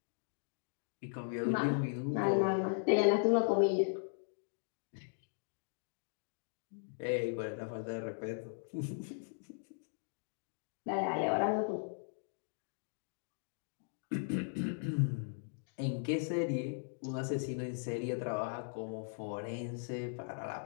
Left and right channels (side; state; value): right; silent; digital silence